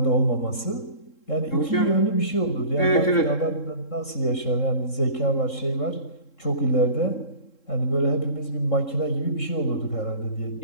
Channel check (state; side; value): late; right; 3.7 ms